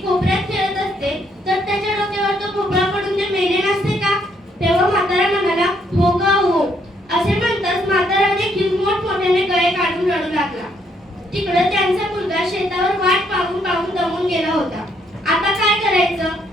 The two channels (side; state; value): both; normal; correlation 0.71